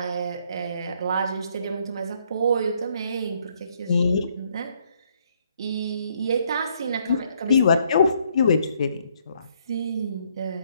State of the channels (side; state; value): both; inverted; correlation -0.69